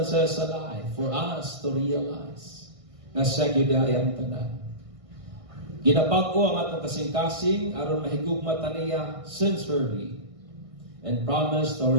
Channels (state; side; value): late; left; 1.6 ms